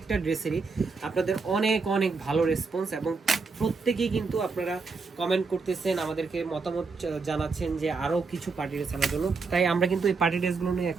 ড্রেসেরই আপনাদের অনেক অনেক ভালো রেসপন্স এবং প্রত্যেকেই কিন্তু আপনারা কমেন্ট করতেছেন, আমাদেরকে মতামত জানাচ্ছেন যে আরও কিছু পার্টি ড্রেস আনার জন্য। তাই আমরা কিন্তু এই পার্টি ড্রেসগুলো নিয়ে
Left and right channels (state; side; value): quieter; left; 4.5 dB